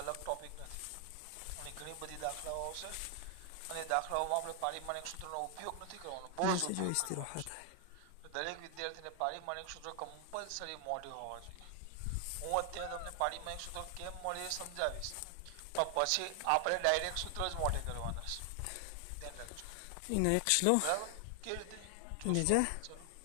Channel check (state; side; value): different; both; correlation 0.00